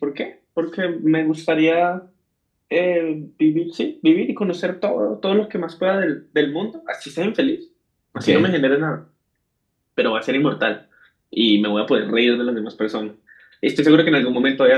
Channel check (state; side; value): identical; both; correlation 1.00